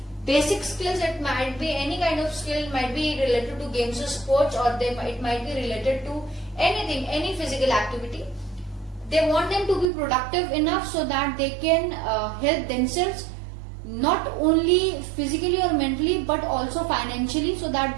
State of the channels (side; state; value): left; drops out; at 9.9 s